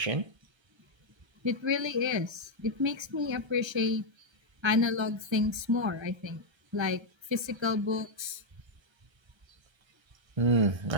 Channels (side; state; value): left; late; 1.3 ms